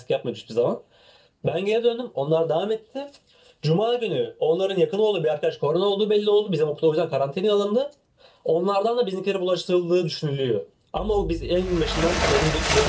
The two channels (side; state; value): both; identical; correlation 1.00